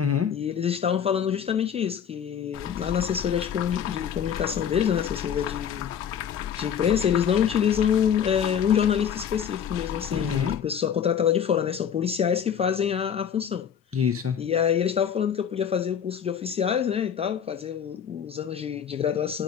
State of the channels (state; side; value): quieter; right; 8.2 dB